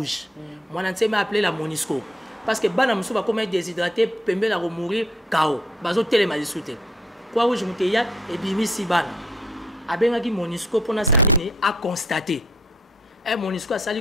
mon entier m'a appelé la Monisco parce que bana musu ba comme déshydraté pembe la mourir KO bazo telema disute Croix-Rouge muteya et bimi si bana Abengaki Monisco pour na salini a constaté. Et Monisco a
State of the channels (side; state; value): both; normal; correlation 0.67